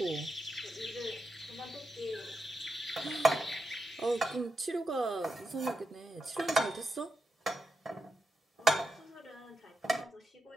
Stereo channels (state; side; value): normal; both; correlation 0.86